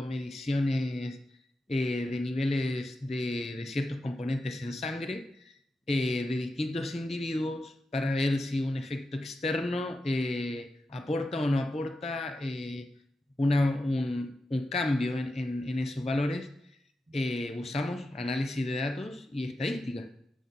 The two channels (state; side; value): normal; both; correlation 0.89